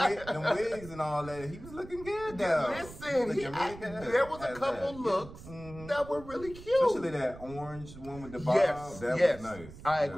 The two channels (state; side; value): noise; right; rumble, 16 dB below the sound